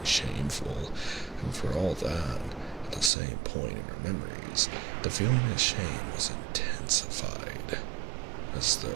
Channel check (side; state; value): left; drops out; at 3.1 s